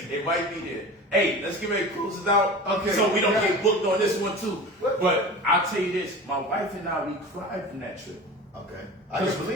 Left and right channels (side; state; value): both; normal; correlation 0.34